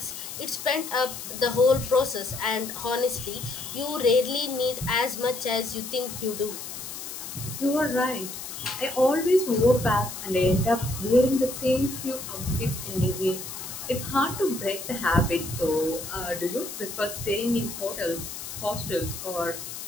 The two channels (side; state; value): left; noise; hiss, 9 dB below the sound